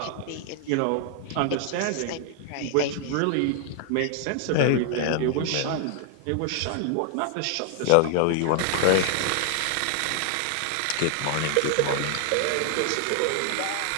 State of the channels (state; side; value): different; both; correlation 0.00